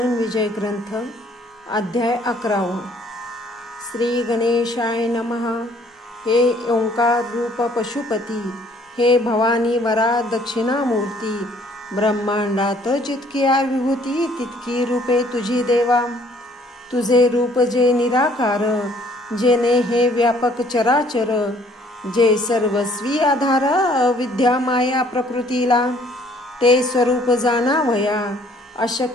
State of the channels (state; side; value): normal; both; correlation 0.60